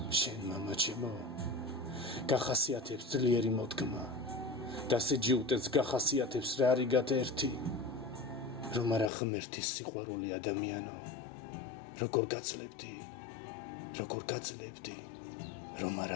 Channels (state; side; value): drops out; right; at 9.1 s